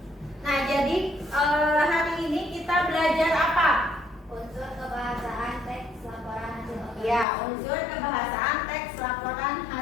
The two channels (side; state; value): right; drops out; at 7.2 s